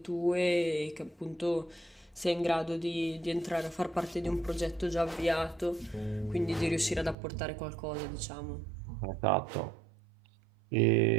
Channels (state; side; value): drops out; left; at 7.2 s